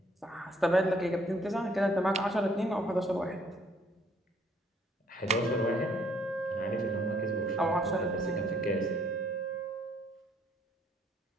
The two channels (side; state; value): both; normal; correlation 0.64